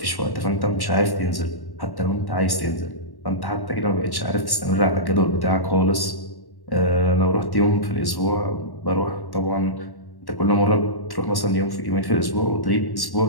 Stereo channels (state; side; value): late; right; 1.1 ms